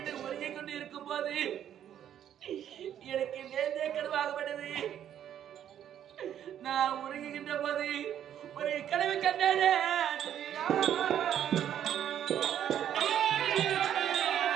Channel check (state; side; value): quieter; left; 10.2 dB